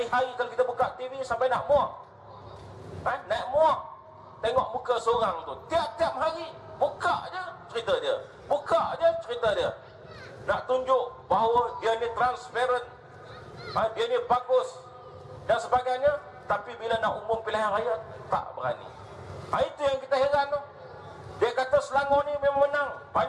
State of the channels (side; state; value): both; identical; correlation 1.00